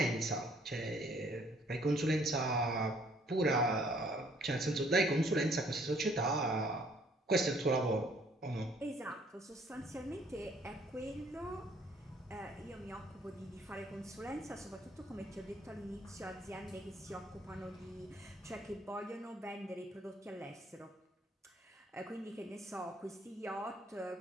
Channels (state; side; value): normal; both; correlation 0.62